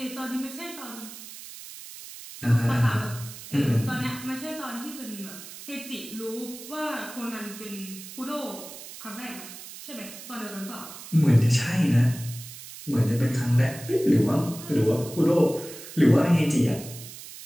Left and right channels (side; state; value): right; noise; hiss, 14 dB below the sound